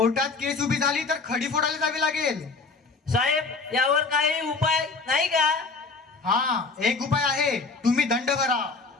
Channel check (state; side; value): quieter; right; 4.3 dB